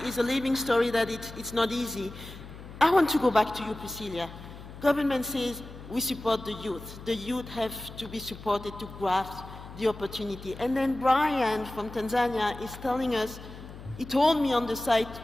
a living story that it's not easy. I want to go back to you, Priscilla. Government says we support the youth. The youth have to be supported to grasp the opportunity. And then Brian from Tanzania is telling us, he told me on the site,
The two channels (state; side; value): noise; left; hum, 15 dB below the sound